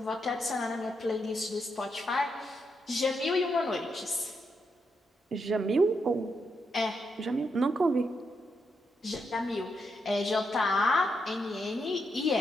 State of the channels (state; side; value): normal; both; correlation 0.81